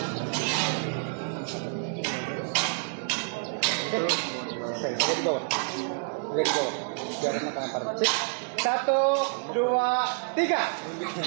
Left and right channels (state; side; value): silent; left; 59 dB below the other